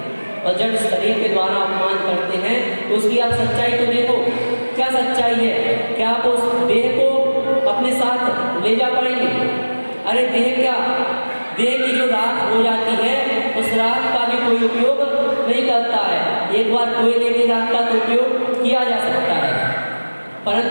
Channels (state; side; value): inverted; both; correlation -1.00